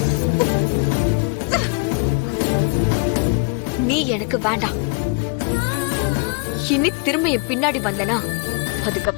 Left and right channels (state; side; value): quieter; right; 34.8 dB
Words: நீ எனக்கு வேண்டாம். இனி திரும்ப என் பின்னாடி வந்தனா